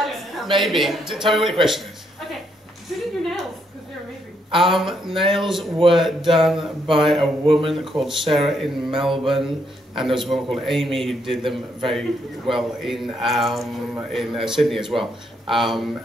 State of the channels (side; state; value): both; normal; correlation 0.75